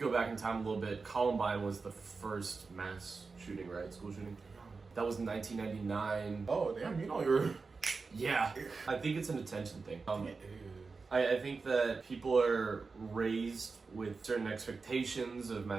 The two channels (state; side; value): quieter; left; 4.4 dB